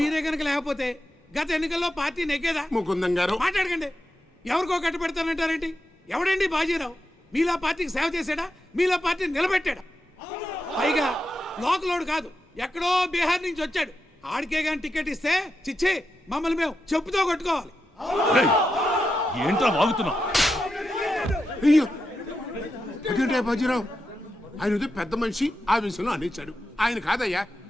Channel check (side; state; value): both; normal; correlation 0.87